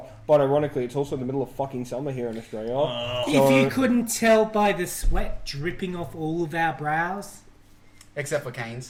But ironically, it's also the middle of fucking summer here in Australia. If you couldn't tell by the sweat dripping off all of our brows, Except for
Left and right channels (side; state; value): both; identical; correlation 1.00